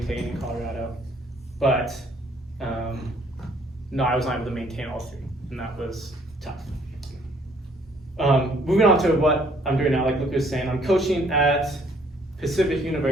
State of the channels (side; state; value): both; normal; correlation 0.62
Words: in Colorado. But no, I was not able to maintain all three, and that was tough. Moving on to what I'm doing now, like Luke was saying, I'm coaching at Pacific